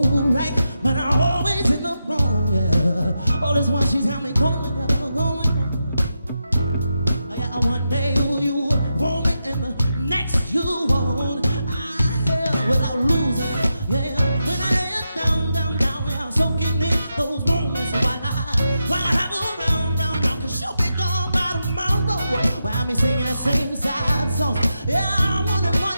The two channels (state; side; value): inverted; both; correlation -0.87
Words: but I always end up wrong, yeah. All this one, she's got me going. Yeah, one day you want me and the next you won't. Without losing, yeah. When I lay it down, yeah, soaking in those moments while I have her round, 'cause she'll be gone by tomorrow. While me singing that same sad songs, yeah, I wanted